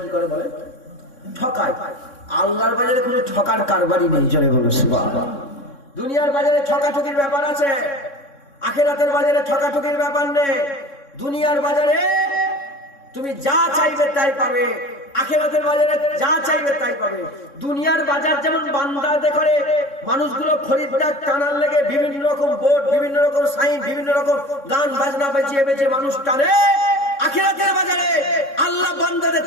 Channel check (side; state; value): right; late; 3.6 ms